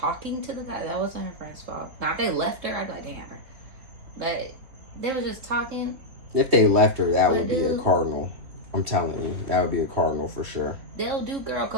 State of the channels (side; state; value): left; late; 3.6 ms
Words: to the guy, that wasn't her friend's fault. Now, if they left her, I'd be like, damn her. But they were just talking. If they left her, that would be a cardinal. I'm telling you, that would be a cardinal for sure. They don't do girl